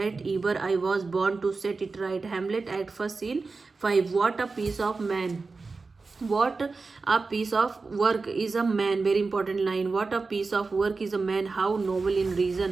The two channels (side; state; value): left; quieter; 4.1 dB